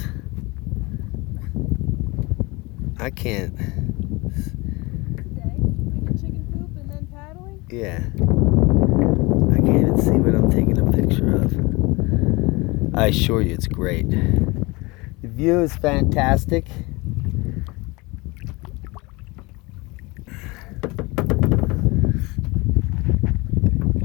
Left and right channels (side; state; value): right; quieter; 24.7 dB